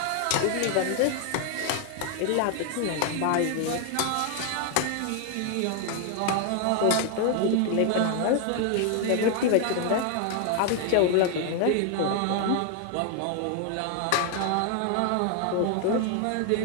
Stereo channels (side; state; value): both; different; correlation 0.00